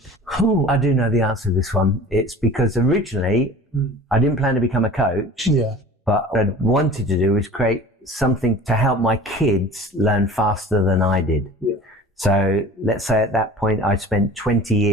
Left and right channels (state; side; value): normal; both; correlation 0.42